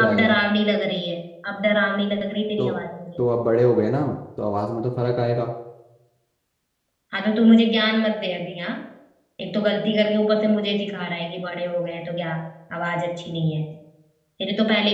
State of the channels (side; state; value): both; identical; correlation 1.00